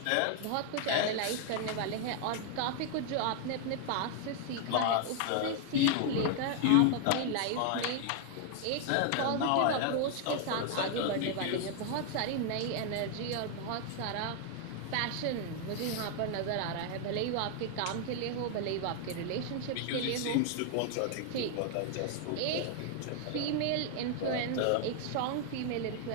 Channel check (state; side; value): different; both; correlation 0.00